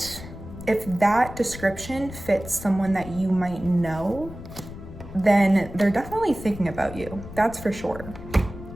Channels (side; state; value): left; noise; rumble, 13 dB below the sound